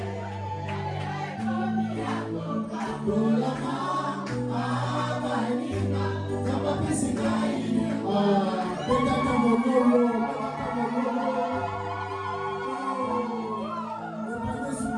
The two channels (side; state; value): both; identical; correlation 1.00